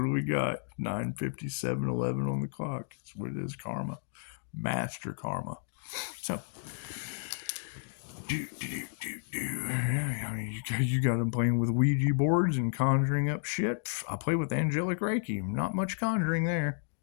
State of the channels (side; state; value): right; silent; digital silence